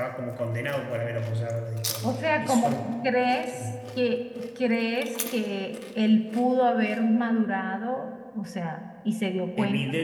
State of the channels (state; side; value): identical; both; correlation 1.00